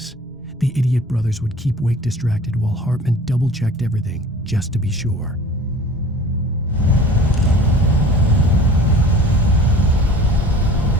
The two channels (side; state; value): both; normal; correlation 0.44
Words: The idiot brothers would keep Wake distracted while Hartman double-checked everything, just to be sure.